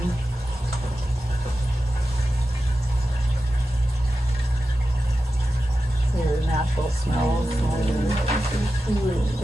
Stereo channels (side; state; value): both; normal; correlation 0.92